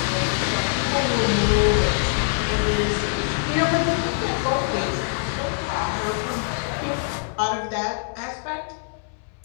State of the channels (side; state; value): right; silent; 63 dB below the other